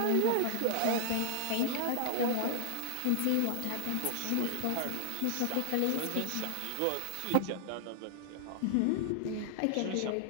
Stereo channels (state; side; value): different; both; correlation 0.00